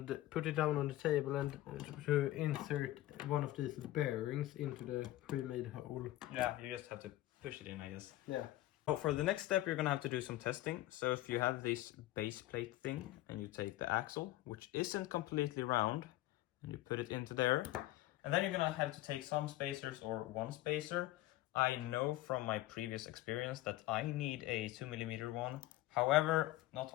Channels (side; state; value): right; quieter; 16.2 dB